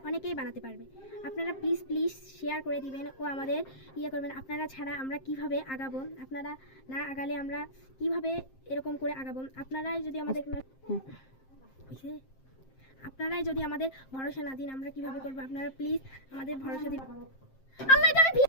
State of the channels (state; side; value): late; right; 7.6 ms